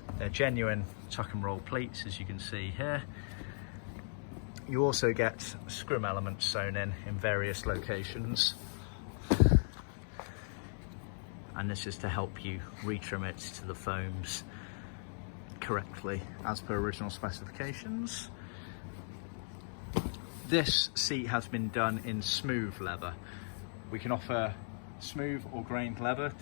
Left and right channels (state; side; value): silent; right; digital silence